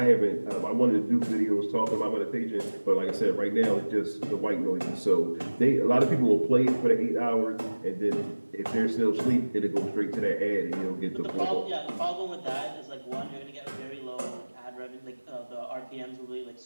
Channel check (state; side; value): inverted; both; correlation -1.00